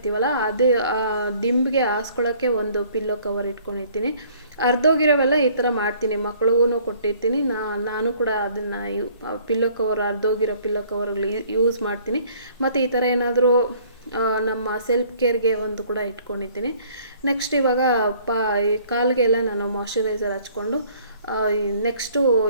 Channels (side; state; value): both; inverted; correlation -0.57